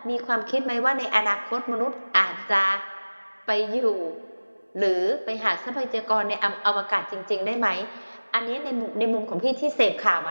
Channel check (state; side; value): inverted; both; correlation -1.00